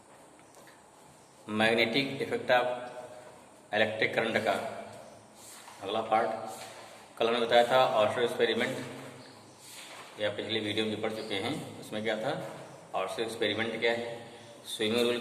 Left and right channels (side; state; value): both; identical; correlation 1.00